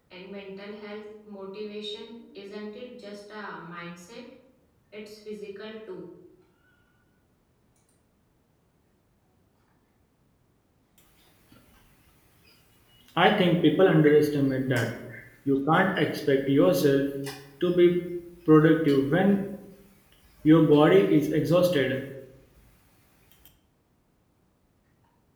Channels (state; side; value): identical; both; correlation 1.00